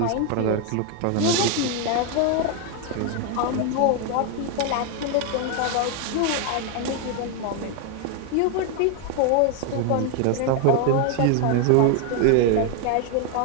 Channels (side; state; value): both; different; correlation 0.01